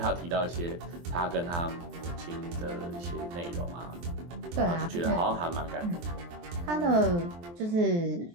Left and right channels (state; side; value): late; left; 23 ms